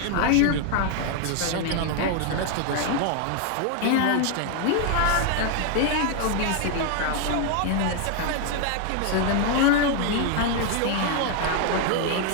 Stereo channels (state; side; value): different; both; correlation 0.00